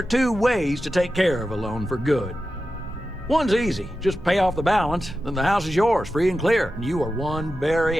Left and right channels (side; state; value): both; normal; correlation 0.92